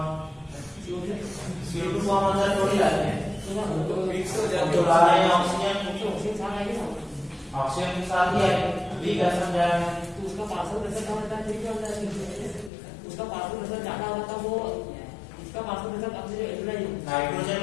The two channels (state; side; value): drops out; right; at 12.7 s